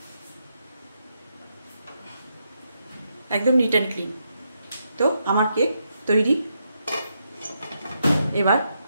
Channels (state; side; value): inverted; both; correlation -0.81